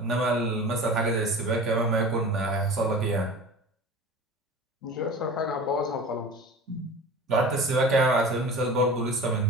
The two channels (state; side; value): normal; both; correlation 0.37